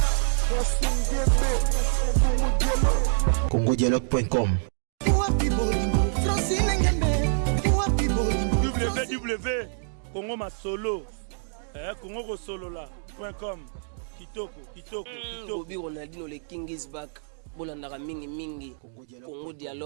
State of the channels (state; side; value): silent; left; digital silence